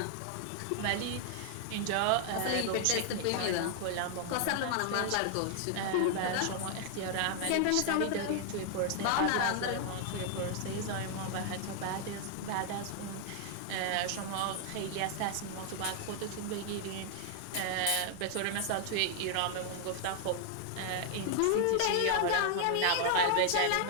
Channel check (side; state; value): both; different; correlation 0.00